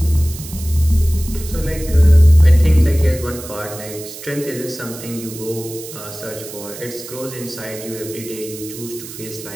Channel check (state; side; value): noise; right; hiss, 13 dB below the sound